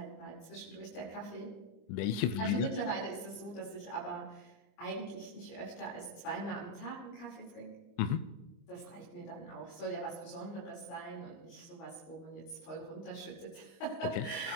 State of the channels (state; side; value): late; right; 25 ms